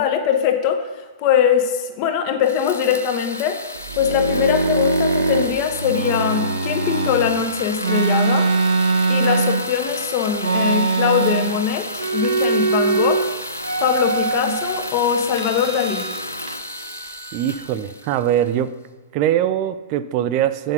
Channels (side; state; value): both; inverted; correlation -0.35